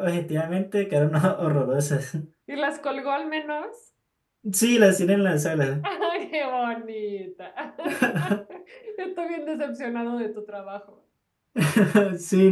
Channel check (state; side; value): identical; both; correlation 1.00